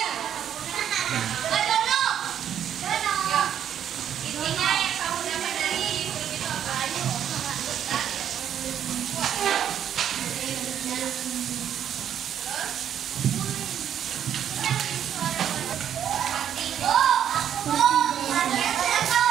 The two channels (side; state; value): left; quieter; 9.6 dB